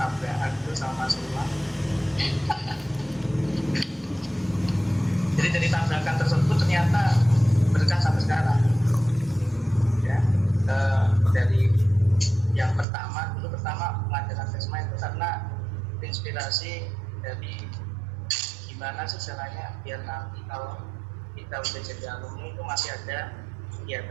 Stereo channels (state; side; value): drops out; left; at 12.9 s